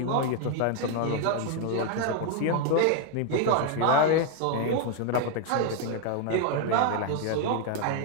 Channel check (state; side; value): different; both; correlation 0.01